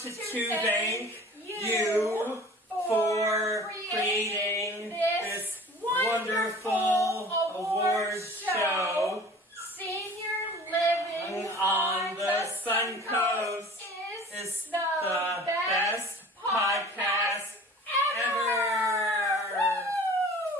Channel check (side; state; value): both; normal; correlation 0.45